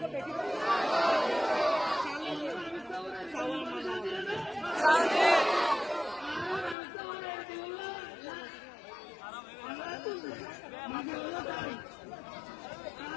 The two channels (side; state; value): right; drops out; at 6.8 s